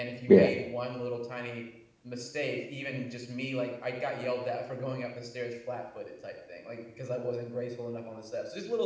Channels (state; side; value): identical; both; correlation 1.00